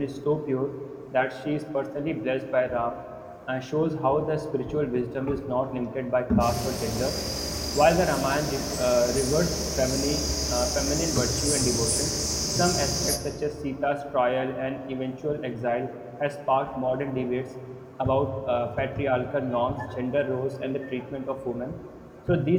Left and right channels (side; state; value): both; identical; correlation 1.00